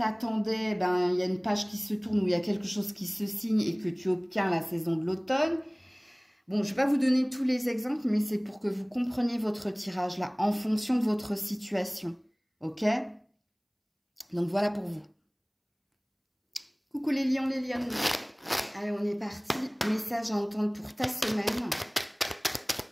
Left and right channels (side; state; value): both; identical; correlation 1.00